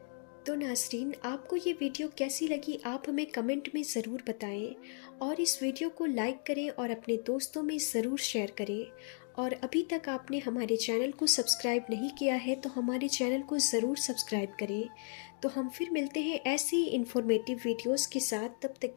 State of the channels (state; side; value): silent; right; 55 dB below the other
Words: تو ناظرین، آپ کو یہ ویڈیو کیسی لگی آپ ہمیں کمنٹ میں ضرور بتائیں، اور اس ویڈیو کو لائک کریں اور اپنے دوستوں میں ضرور شیئر کریں، اور ابھی تک آپ نے ہمارے چینل کو سبسکرائب نہیں کیا ہے تو ہمارے چینل کو ضرور سبسکرائب کریں۔ تو ہم پھر ملتے ہیں ایسی انفارمیٹیو ویڈیوز کے ساتھ، تب تک